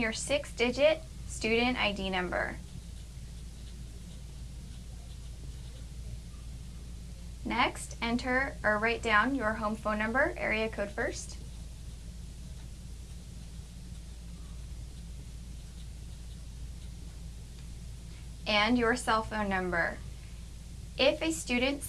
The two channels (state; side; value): identical; both; correlation 1.00